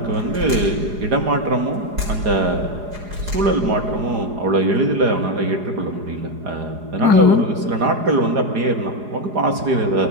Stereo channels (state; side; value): late; left; 4.8 ms